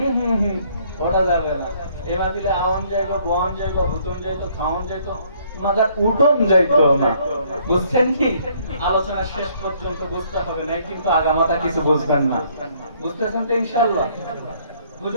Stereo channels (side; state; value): both; inverted; correlation -0.65